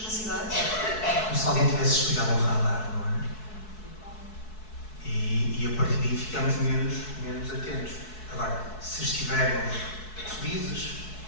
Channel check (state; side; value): late; right; 4.6 ms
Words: Como se alguém tivesse desligado um radar, não é? E a partir daí ficamos menos atentos. Agora, se estivermos felizes,